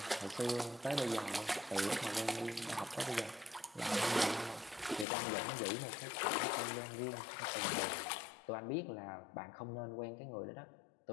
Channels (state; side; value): drops out; right; at 5.1 s